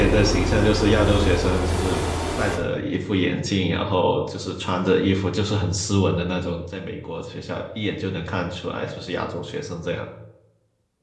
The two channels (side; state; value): both; identical; correlation 1.00